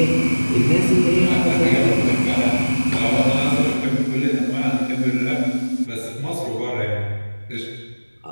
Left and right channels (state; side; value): inverted; both; correlation -1.00